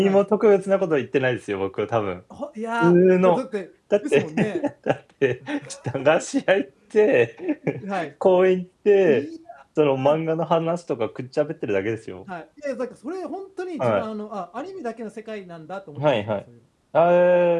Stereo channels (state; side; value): identical; both; correlation 1.00